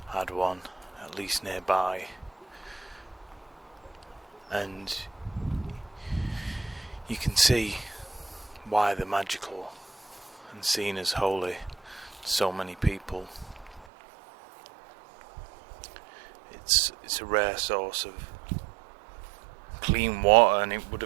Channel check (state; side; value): drops out; left; at 13.9 s